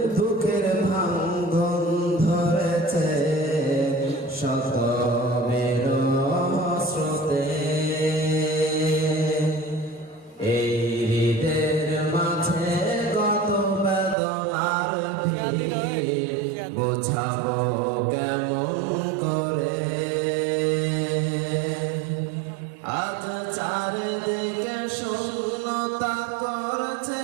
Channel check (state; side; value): drops out; left; at 14.2 s